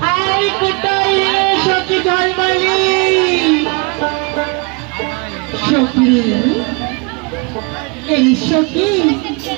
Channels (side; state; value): left; quieter; 31.0 dB